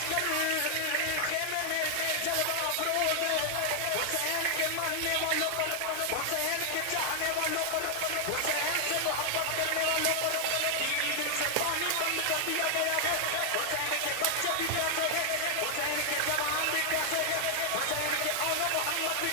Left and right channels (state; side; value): different; both; correlation 0.00